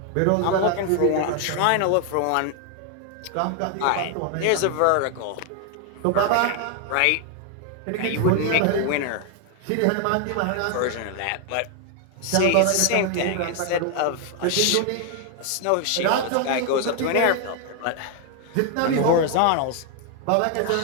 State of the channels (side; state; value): both; different; correlation 0.00